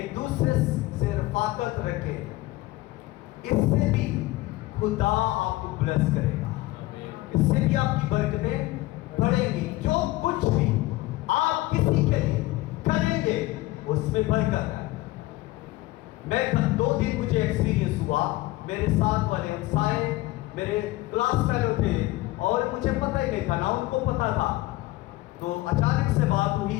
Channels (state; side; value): quieter; right; 18.8 dB